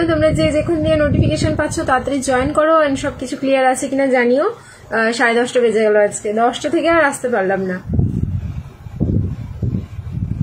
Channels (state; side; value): identical; both; correlation 1.00